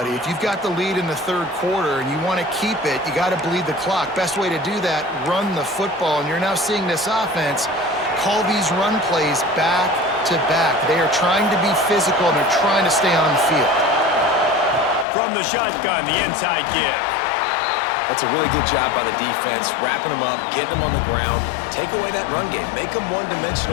If you've got the lead in the 3rd quarter and you want to keep it, you got to bleed the clock. Best way to do that, run the football. And you're now seeing this offense call these run plays back to back. They are trying to be physical, and they're trying to stay on the field. From the shotgun, the inside give. That's a really good job by the defense, wrapping them up, getting them on the ground. Take away that run game. Make them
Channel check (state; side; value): drops out; right; at 15.1 s